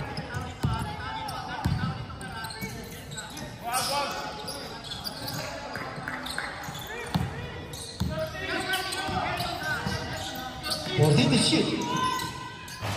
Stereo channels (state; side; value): identical; both; correlation 1.00